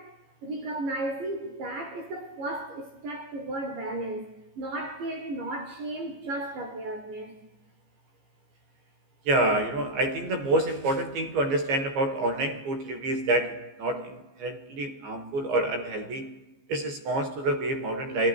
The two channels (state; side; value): late; left; 15 ms